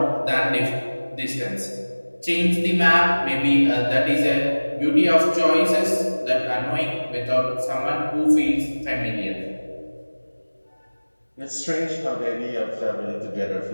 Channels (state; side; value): inverted; both; correlation -1.00